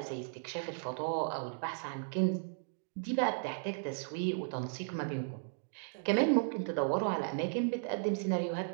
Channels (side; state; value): left; silent; digital silence